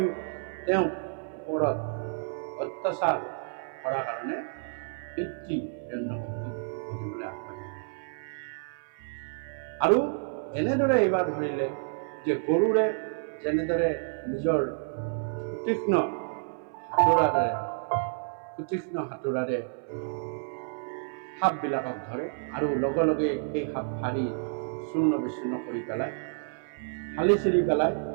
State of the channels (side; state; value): left; silent; 58 dB below the other